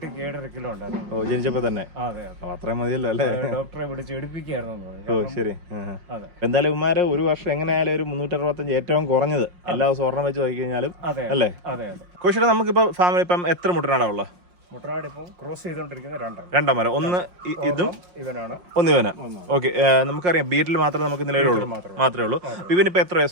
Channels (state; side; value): late; left; 5.6 ms